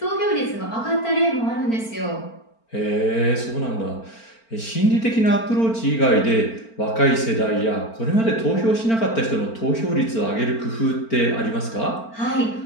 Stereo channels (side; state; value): right; late; 4.4 ms